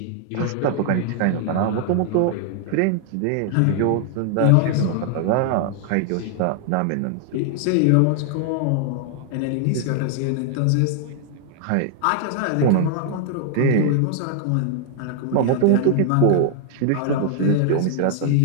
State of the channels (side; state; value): both; different; correlation 0.00